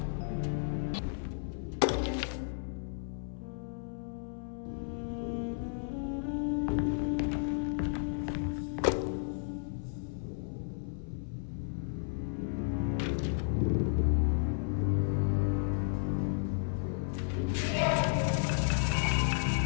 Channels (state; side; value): silent; right; 56 dB below the other